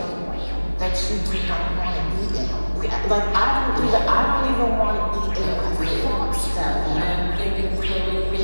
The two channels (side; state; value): both; inverted; correlation -1.00